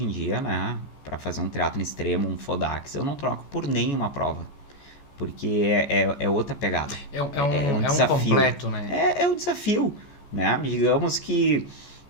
em dia, né, para fazer um triatlon extremo, um Fodax, eu não troco por nenhuma prova. Porque é outra pegada. É um desafio. Completo, né? É um desafio, né? Digamos que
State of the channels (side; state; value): right; late; 14 ms